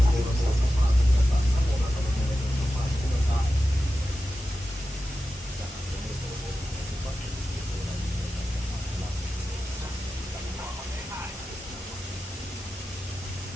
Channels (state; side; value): normal; both; correlation 0.92